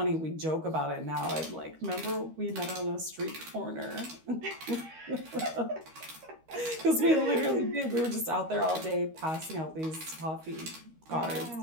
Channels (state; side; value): late; left; 13 ms